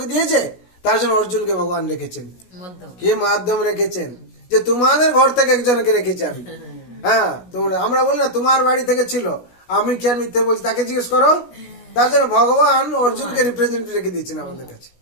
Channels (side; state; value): right; late; 16 ms